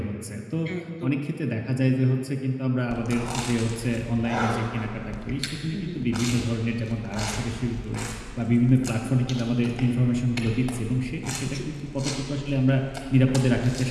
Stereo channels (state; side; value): identical; both; correlation 1.00